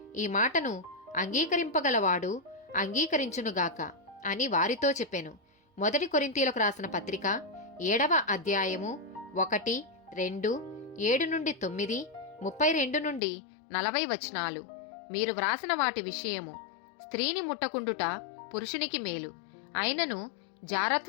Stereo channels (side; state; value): right; drops out; at 13.2 s